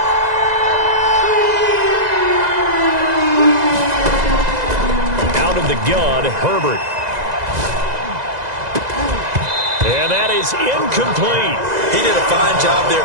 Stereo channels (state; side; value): late; left; 2.0 ms